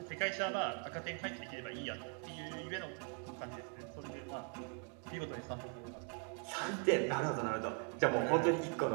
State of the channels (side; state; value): left; quieter; 38.1 dB